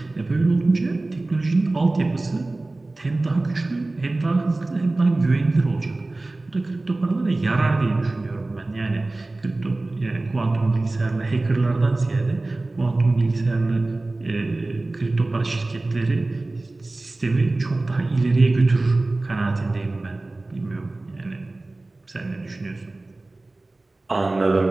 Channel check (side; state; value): left; quieter; 3.0 dB